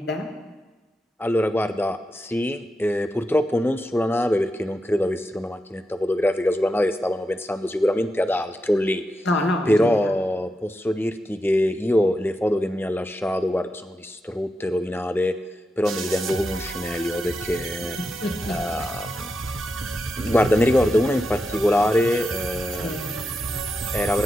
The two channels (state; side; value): normal; both; correlation 0.87